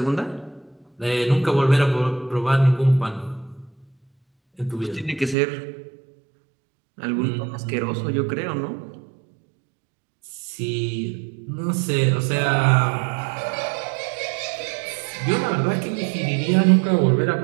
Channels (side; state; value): left; drops out; at 5.4 s